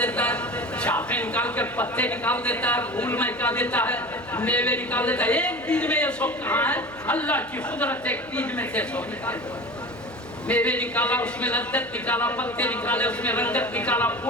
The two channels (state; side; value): noise; right; hum, 23 dB below the sound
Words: ہے، شاخیں نکال کر پتے نکال دیتا ہے، پھول مہکا دیتا ہے، میوے نکال دیتا ہے، ایک بیج میں یہ سب کہاں ہے؟ اللہ کی قدرت ایک بیج میں سے سب نکال دیتا ہے، میوے نکالا اس میں لذت نکالا، پتے نکالے اس میں رنگت نکالا،